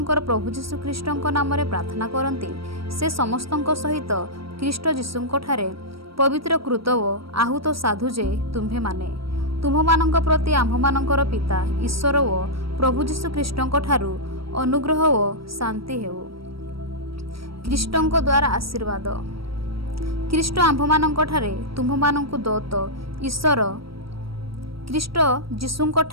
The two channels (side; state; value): left; late; 0.75 ms